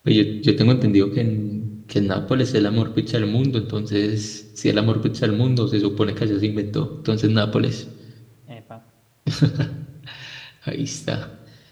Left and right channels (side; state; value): both; identical; correlation 1.00